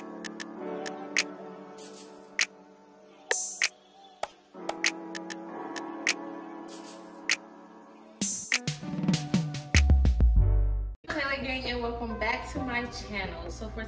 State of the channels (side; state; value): both; identical; correlation 1.00